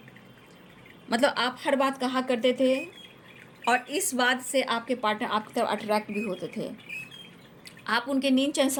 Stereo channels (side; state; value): both; identical; correlation 1.00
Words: मतलब आप हर बात कहा करते थे और इस बात से आपके पार्टनर आपकी तरफ अट्रैक्ट भी होते थे। आप उनके नींद चैन